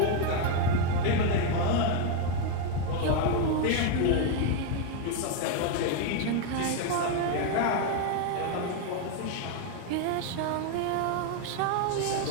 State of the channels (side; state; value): both; different; correlation 0.01